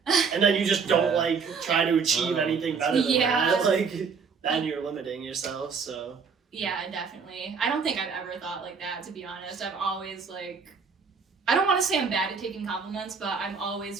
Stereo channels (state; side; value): quieter; left; 5.6 dB